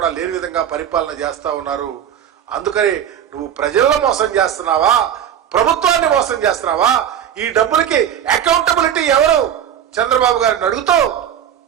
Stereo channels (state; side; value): quieter; left; 9.6 dB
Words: లేని విధంగా పరిపాలన చేస్తా ఉన్నారు. అందుకని నువ్వు ప్రజలను మోసం చేస్తున్నావా, ప్రభుత్వాన్ని మోసం చేస్తున్నావా? ఈ డబ్బులకి అకౌంటబిలిటీ ఎవరు చంద్రబాబు గారిని అడుగుతూ